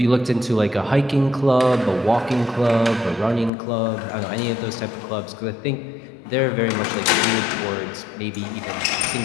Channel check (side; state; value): right; drops out; at 3.5 s